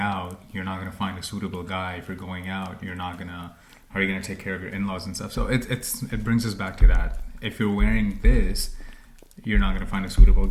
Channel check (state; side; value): identical; both; correlation 1.00